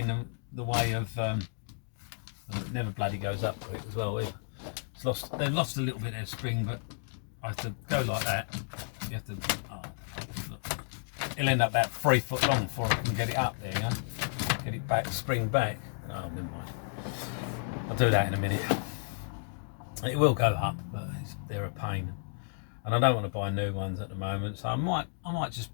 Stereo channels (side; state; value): right; silent; digital silence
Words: the way of, it never bloody goes up quick as well. They've lost a little bit of spring, but I have to go like that. You have to, it'll end up about 3 foot long before I can get it up there, you know? Get it back, spring back. Oh, never mind. I'll do that in a minute. It will go up, but they're a pain. And I don't want to buy new ones at the moment, so I might just